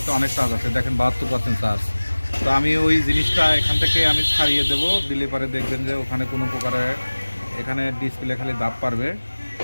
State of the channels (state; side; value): inverted; both; correlation -1.00